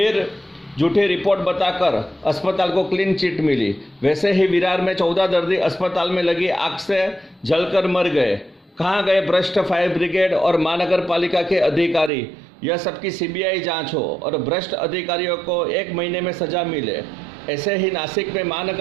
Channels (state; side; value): drops out; left; at 12.1 s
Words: झूठी रिपोर्ट बताकर अस्पताल को क्लीन चिट मिली। वैसे ही विरार में 14 दर्दी अस्पताल में लगी आग से जलकर मर गए। कहाँ गए भ्रष्ट फायर ब्रिगेड और महानगर पालिका के अधिकारी। यह सबकी सीबीआई जांच हो और भ्रष्ट अधिकारियों को 1 महीने में सजा मिले। ऐसे ही नासिक में